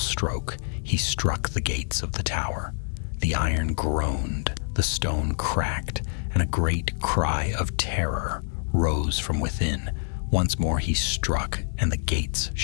he struck the gates of the tower. The iron groaned, the stone cracked, and a great cry of terror rose from within. Once more he struck, and the gates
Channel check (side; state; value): right; silent; 61 dB below the other